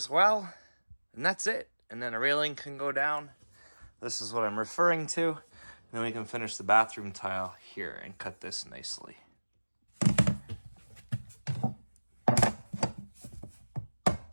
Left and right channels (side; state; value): both; inverted; correlation -1.00